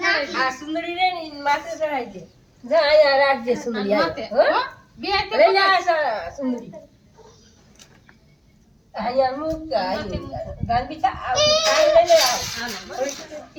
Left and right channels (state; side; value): identical; both; correlation 1.00